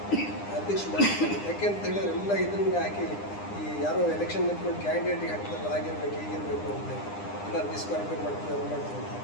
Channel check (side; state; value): right; late; 9.8 ms